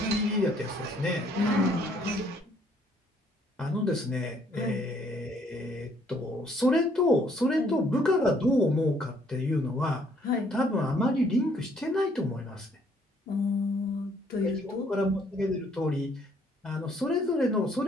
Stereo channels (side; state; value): both; normal; correlation 0.65